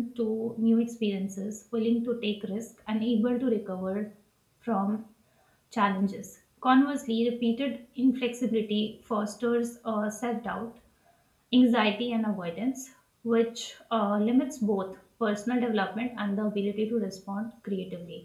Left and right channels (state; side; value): identical; both; correlation 1.00